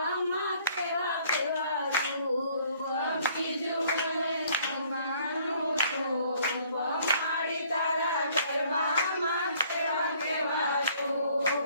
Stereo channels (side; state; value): both; inverted; correlation -0.60